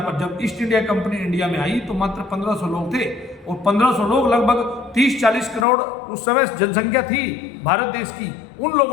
पर, जब ईस्ट इंडिया कंपनी इंडिया में आई तो मात्र 1500 लोग थे, और 1500 लोग लगभग 30-40 करोड़ उस समय जनसंख्या थी भारत देश की, उन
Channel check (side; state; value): right; drops out; at 5.7 s